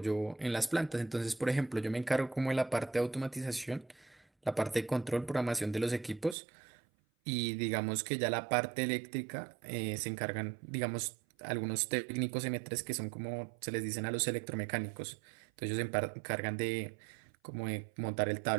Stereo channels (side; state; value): left; drops out; at 6.4 s